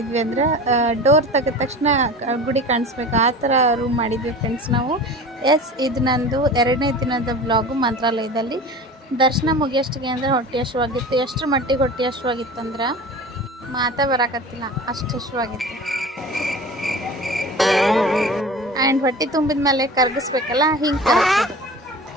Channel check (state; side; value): normal; both; correlation 0.36